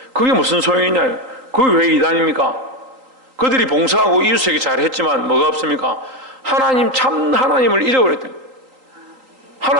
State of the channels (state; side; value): late; left; 3.8 ms